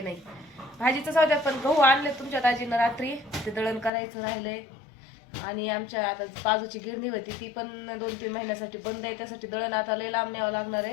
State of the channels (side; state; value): right; drops out; at 3.9 s